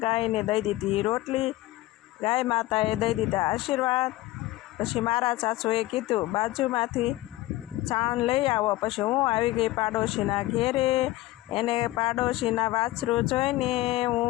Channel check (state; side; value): quieter; right; 17.6 dB